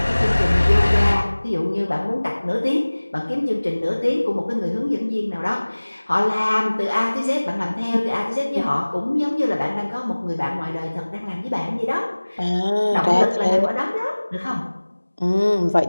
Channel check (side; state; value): both; inverted; correlation -1.00